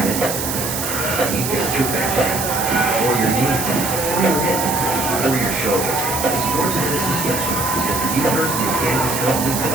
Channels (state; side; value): noise; right; hiss, 3 dB below the sound